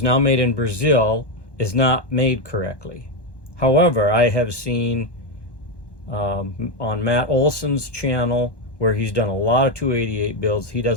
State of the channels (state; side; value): late; right; 1.1 ms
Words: now made in Brazil, is not made correctly. However, I have seen on Matt Olson's channel, where he's done a lot of 288 builds, he